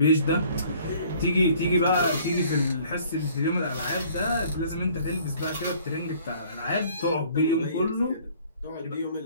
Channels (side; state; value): both; inverted; correlation -0.55